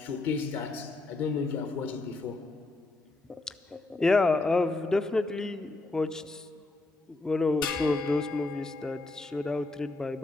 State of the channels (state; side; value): quieter; right; 3.1 dB